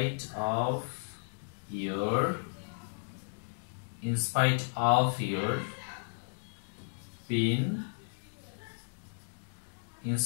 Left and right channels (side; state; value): right; silent; digital silence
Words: your being, in